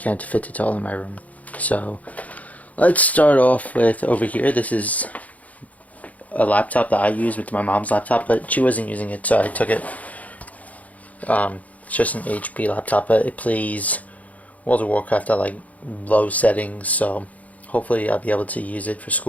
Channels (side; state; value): right; late; 0.072 ms